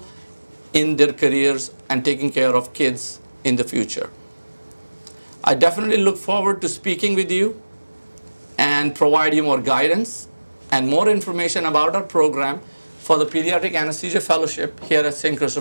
in their careers and taking care of kids in the future. I definitely look forward to speaking with you and provide you more guidance and more information about our program for the Pediatric Anesthesia Fellowship here at St.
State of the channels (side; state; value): both; inverted; correlation -1.00